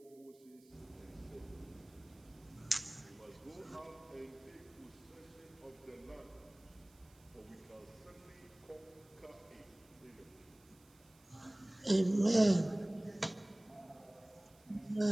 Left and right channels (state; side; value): noise; right; hiss, 28 dB below the sound